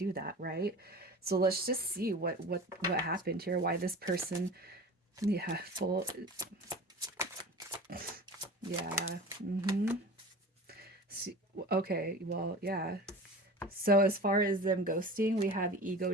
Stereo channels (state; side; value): normal; both; correlation 0.36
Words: that, right? So let's just see what happened here. Why this person, yeah, full, yeah, mm-hmm. See, okay, well, yeah. So as far as them ghosting, we have ego